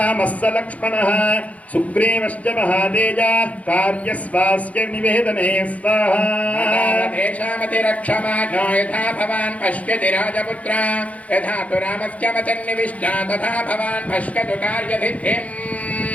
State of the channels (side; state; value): right; late; 0.067 ms